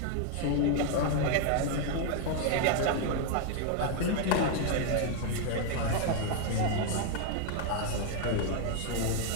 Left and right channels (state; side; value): different; both; correlation 0.00